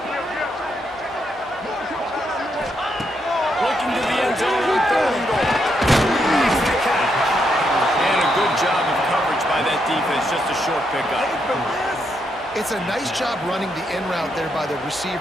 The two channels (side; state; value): both; normal; correlation 0.79